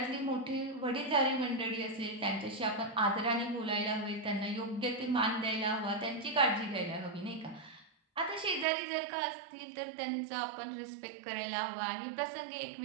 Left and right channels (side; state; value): left; drops out; at 8.7 s